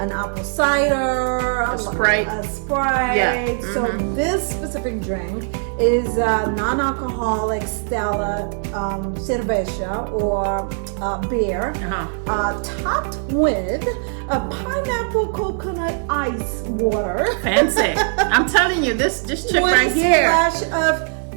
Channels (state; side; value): silent; left; 65 dB below the other